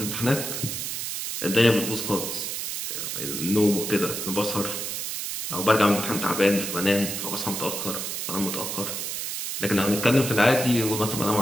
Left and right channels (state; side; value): noise; right; hiss, 4 dB below the sound